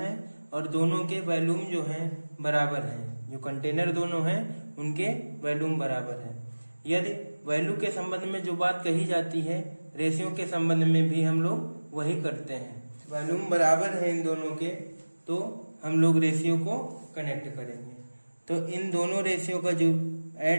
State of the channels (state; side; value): inverted; both; correlation -1.00